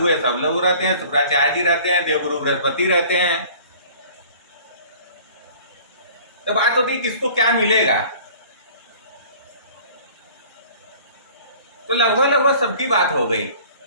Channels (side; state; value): both; inverted; correlation -0.48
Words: सब लोग रहते हैं, शुक्राचार्य जी रहते हैं, देवगुरु बृहस्पति रहते हैं। तो बात होती है किसको क्या मिलेगा। तो लगभग सबकी बात हो गई।